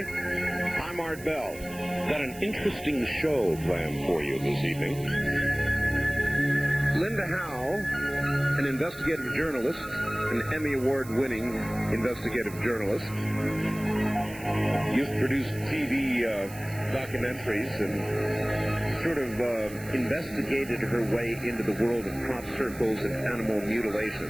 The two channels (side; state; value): right; noise; hiss, 17 dB below the sound